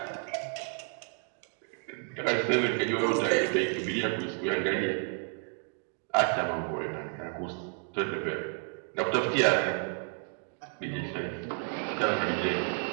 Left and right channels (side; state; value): left; quieter; 39.0 dB